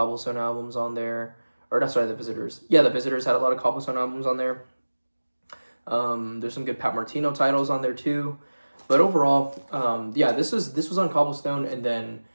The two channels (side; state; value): both; inverted; correlation -1.00